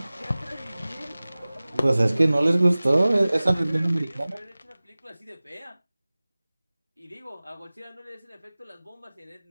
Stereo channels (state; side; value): inverted; both; correlation -0.99